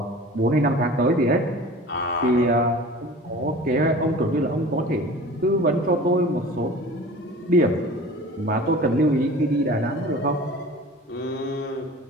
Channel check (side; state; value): both; normal; correlation 0.40